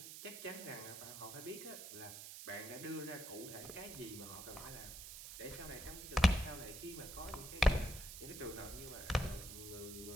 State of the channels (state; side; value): noise; right; hiss, 10 dB below the sound